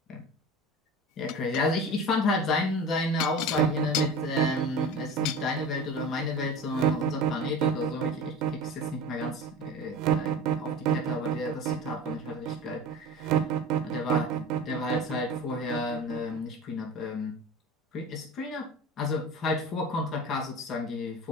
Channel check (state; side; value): normal; both; correlation 0.34